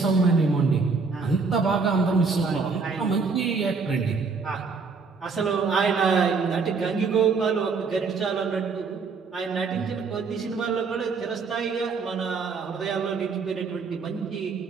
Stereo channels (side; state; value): left; quieter; 4.8 dB